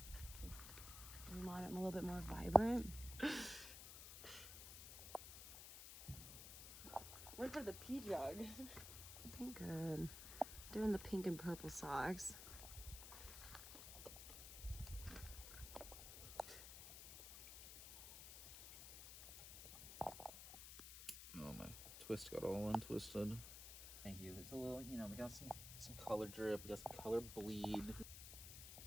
We want it a little bit more vibrant. Went for the pea jug. Looking good. Doing the pink and purple socks. Oh, my twist got all untwisted. Thank you. It's a little, you know, we got some color drip, we got some color bleed.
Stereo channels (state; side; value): noise; left; hiss, 10 dB below the sound